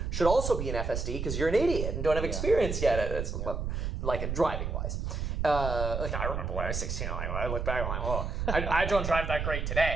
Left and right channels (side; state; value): right; noise; rumble, 2 dB below the sound